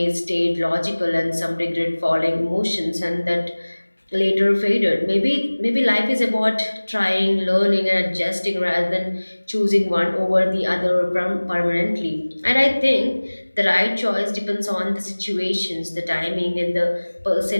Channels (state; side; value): inverted; both; correlation -1.00